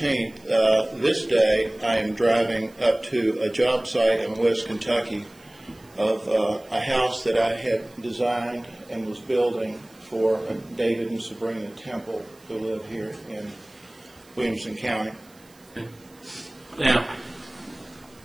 this day, I am driving up to a job site in West Kentucky of a house that I had designed and was building for David and Sabrina Temple, who live here in Williamson County. Okay. Now,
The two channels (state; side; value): noise; right; hiss, 28 dB below the sound